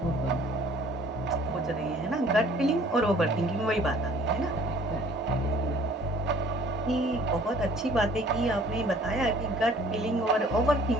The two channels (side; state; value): both; normal; correlation 0.54